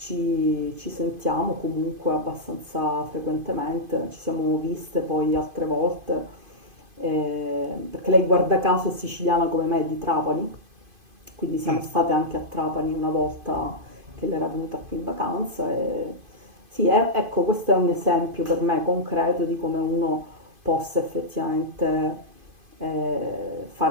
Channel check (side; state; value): left; late; 2.5 ms